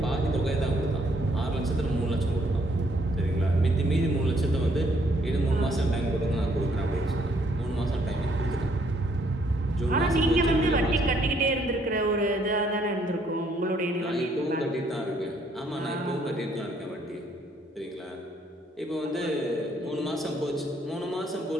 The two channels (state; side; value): normal; both; correlation 0.68